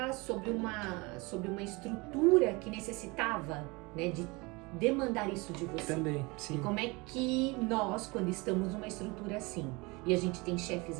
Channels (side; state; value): left; quieter; 25.8 dB